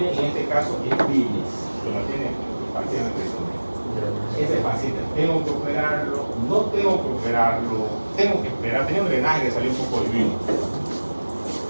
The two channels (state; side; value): inverted; both; correlation -1.00